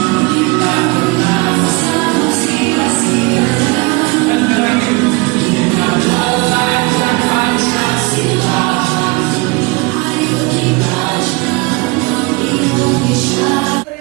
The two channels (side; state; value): left; quieter; 25.4 dB